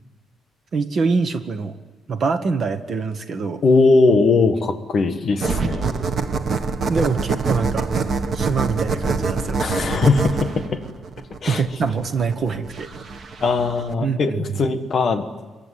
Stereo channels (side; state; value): both; normal; correlation 0.76